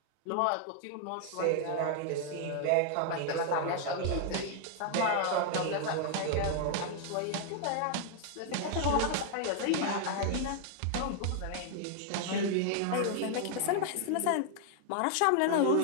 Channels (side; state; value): both; different; correlation 0.00